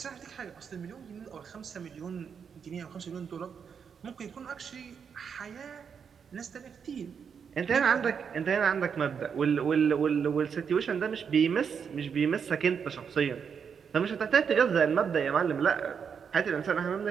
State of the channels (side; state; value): left; quieter; 6.8 dB